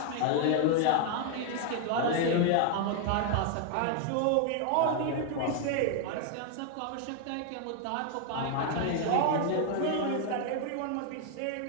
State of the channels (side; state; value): both; different; correlation 0.00